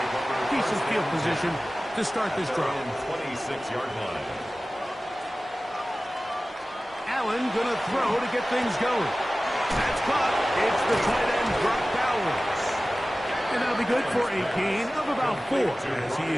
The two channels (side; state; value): both; normal; correlation 0.97